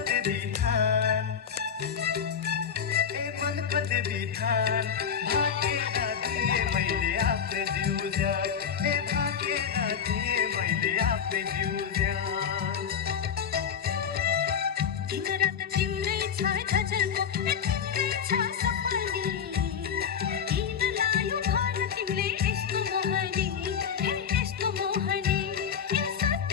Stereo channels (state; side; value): quieter; right; 7.5 dB